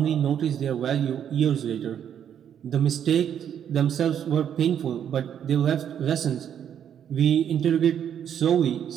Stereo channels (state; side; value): quieter; left; 9.1 dB